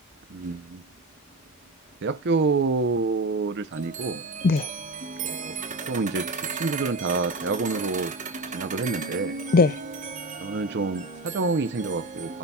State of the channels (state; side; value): normal; both; correlation 0.24